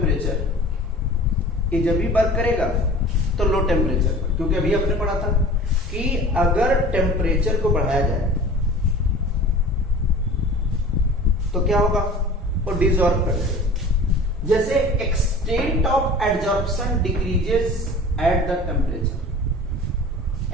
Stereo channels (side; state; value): both; normal; correlation 0.41